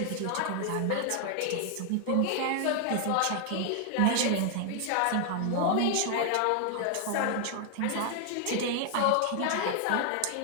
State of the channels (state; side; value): different; both; correlation 0.00